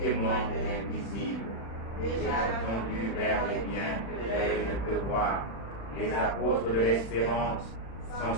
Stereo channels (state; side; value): late; right; 35 ms